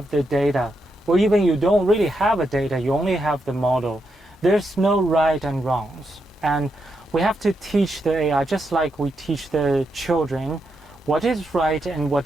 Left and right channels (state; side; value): normal; both; correlation 0.83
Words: the data, or even you don't really have a data, you only have the model, there's no right and wrongs. And we have to teach the AI, just like we teach the children, what is right and